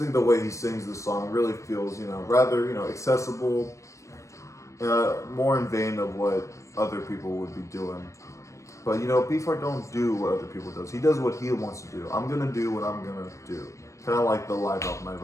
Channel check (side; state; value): right; late; 0.15 ms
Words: the way he sings this song really feels, rather, accessible, more in vein of what other people would be doing. But Beefheart don't do what other people does. He does what he wants to do. I'm gonna do what I'm gonna do. Kind of like the live album I